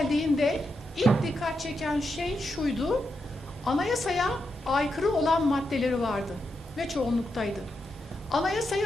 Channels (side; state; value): both; normal; correlation 0.85